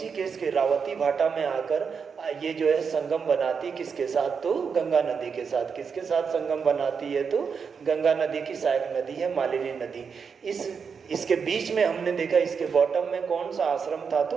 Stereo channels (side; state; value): left; quieter; 6.0 dB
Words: के रावती भाटा में आकर ये जो है संगम बनाती, किसके साथ, तो गंगा नदी के साथ। किसके साथ संगम बनाती है, तो गंगा नदी की सहायक नदी है मालिनी नदी। इसके बीच में हमने देखा इसके बॉटम में कौन सा आश्रम था, तो